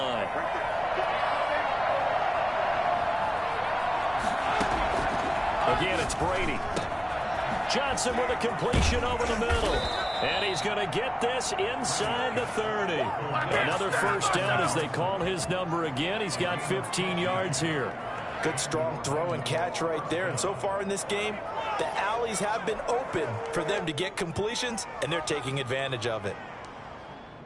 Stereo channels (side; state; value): both; identical; correlation 1.00